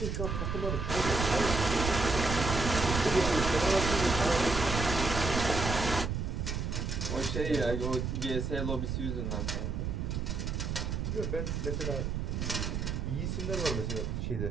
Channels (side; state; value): right; noise; rumble, 2 dB below the sound